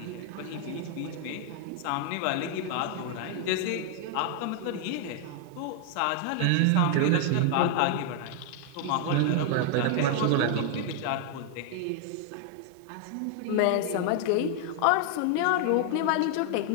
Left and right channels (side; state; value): both; different; correlation 0.00